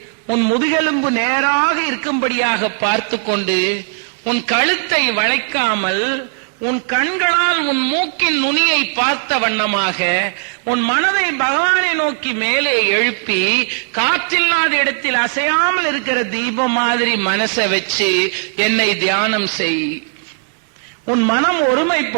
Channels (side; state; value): left; silent; 60 dB below the other